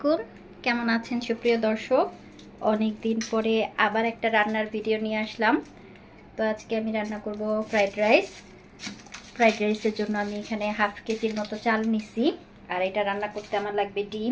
কেমন আছেন সুপ্রিয় দর্শক? অনেক দিন পরে আবার একটা রান্নার ভিডিও নিয়ে আসলাম। তো আজকে আমি রান্না করব ফ্রাইড রাইস। ফ্রাইড রাইসের জন্য আমি এখানে হাফ কেজির মতো চাল নিছি। আর এটা রান্না করতে আমার লাগবে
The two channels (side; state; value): both; identical; correlation 1.00